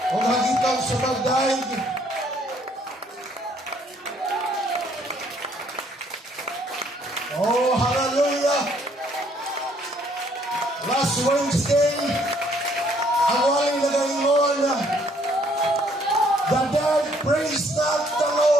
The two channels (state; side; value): normal; both; correlation 0.65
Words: o hagitan sa pagdaig. Oh, hallelujah! Last Wednesday, ang waling nagaingon, the dead praise not the